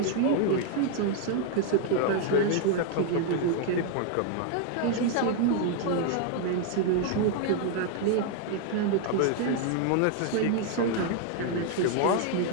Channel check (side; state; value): both; different; correlation 0.00